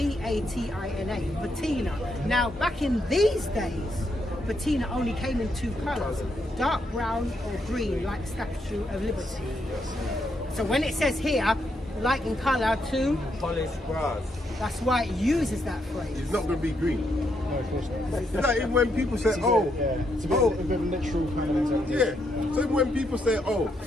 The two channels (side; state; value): both; normal; correlation 0.78